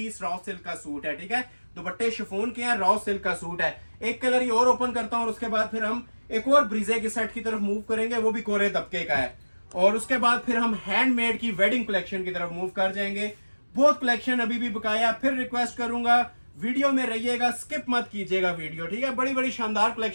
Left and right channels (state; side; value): inverted; both; correlation -1.00